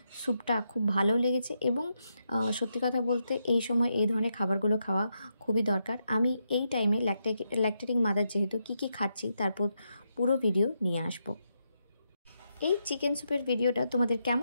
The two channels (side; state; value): both; inverted; correlation -0.82